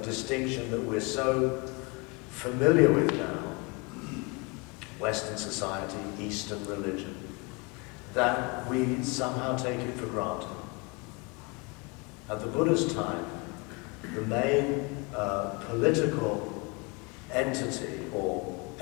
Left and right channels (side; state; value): right; quieter; 29.6 dB